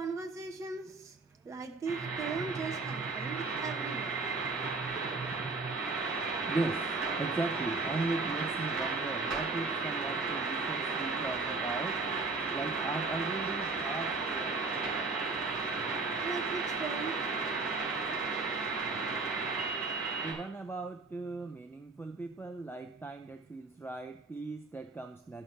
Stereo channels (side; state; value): left; quieter; 3.7 dB